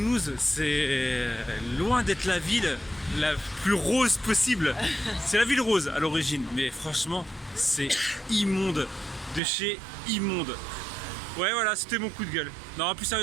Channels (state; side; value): drops out; left; at 9.4 s